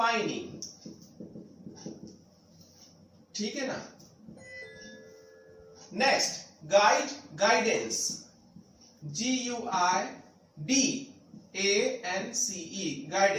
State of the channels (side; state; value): both; identical; correlation 1.00